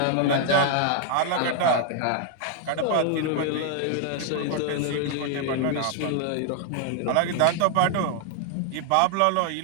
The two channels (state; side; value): different; both; correlation 0.00